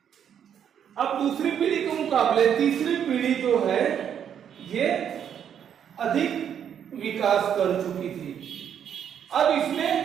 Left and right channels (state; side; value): quieter; left; 8.7 dB